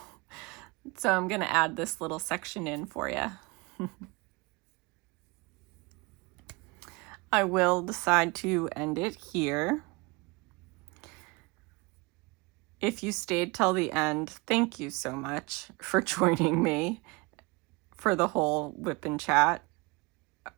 So I'm going to add this little section in for you. I will decide to end it here. If you stayed till the end, thank you so much for joining me for the whole WIP and chat.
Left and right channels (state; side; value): quieter; left; 25.9 dB